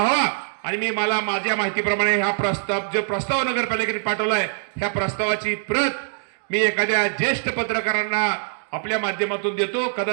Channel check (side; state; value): left; silent; digital silence